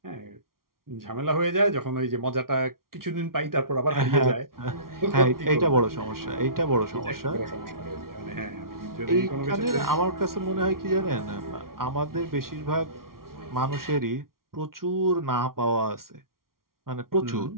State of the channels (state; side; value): late; left; 0.93 ms